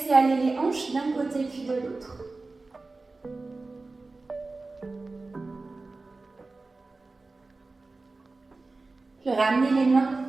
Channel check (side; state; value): left; quieter; 3.5 dB